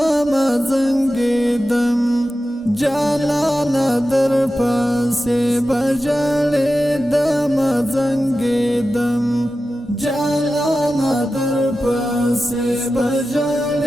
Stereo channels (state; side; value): normal; both; correlation 0.93